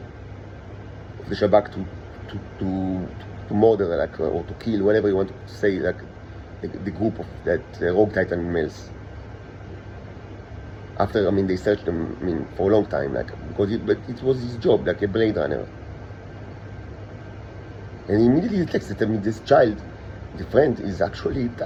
the Shabak to murder or to kill, whatever you want to say, like the group of that rogue Titan males. After they searched them for a long time, because it was his job, like a Blade Runner. And he immediately detects that this child, the friend, is actually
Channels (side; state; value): both; identical; correlation 1.00